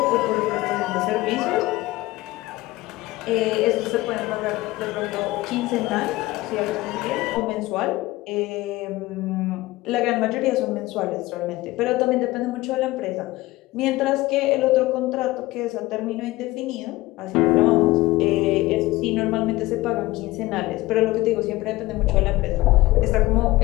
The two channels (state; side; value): quieter; right; 18.9 dB